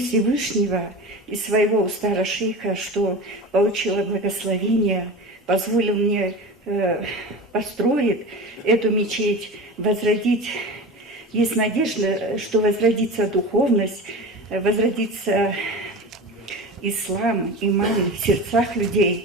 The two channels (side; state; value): both; normal; correlation 0.31